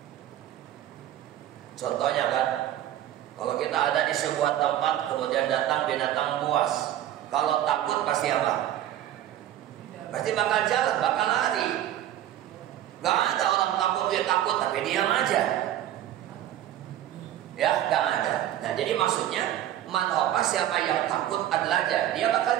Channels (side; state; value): left; quieter; 12.2 dB